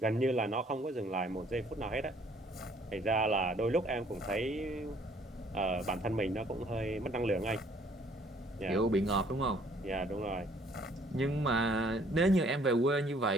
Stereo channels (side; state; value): both; normal; correlation 0.61